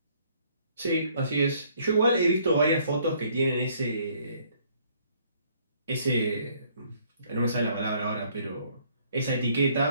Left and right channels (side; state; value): both; inverted; correlation -0.64